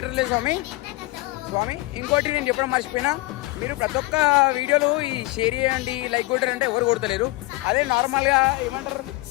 స్వామి. ఇంకోటి నేను చెప్పడం మర్చిపోయినా, మీరు ప్రతి ఒక్క వీడియోలు ఈ షేర్ చేయండి, లైక్ కొట్టారంటే ఎవరు కొడతలేరు. అదే నార్మల్గా ఏమంటారు,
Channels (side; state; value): right; quieter; 20.5 dB